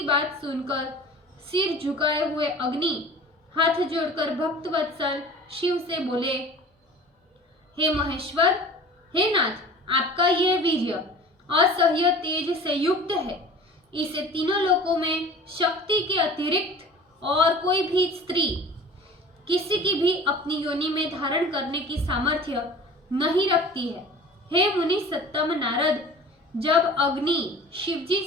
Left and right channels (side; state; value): both; normal; correlation 0.42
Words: बात सुनकर सिर झुकाए हुए अग्नि हाथ जोड़कर भक्त वत्सल शिव से बोले, हे महेश्वर, हे नाथ, आपका यह वीर्य असह्य तेज से युक्त है। इसे तीनों लोकों में शक्ति के अतिरिक्त और कोई भी स्त्री किसी की भी अपनी योनि में धारण करने की सामर्थ्य नहीं रखती है। हे मुनि सत्तम नारद, जब अग्नि शिवजी